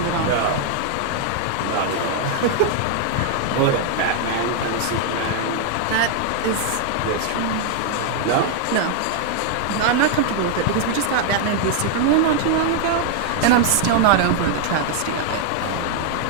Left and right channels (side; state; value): both; different; correlation 0.00